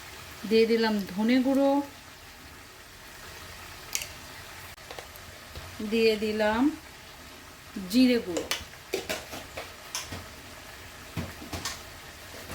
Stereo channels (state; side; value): identical; both; correlation 1.00